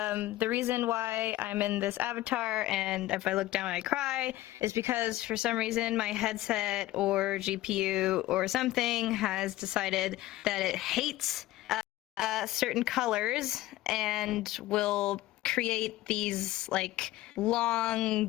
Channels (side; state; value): right; quieter; 16.3 dB